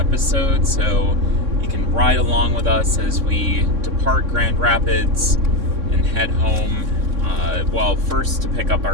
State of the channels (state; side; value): late; left; 3.6 ms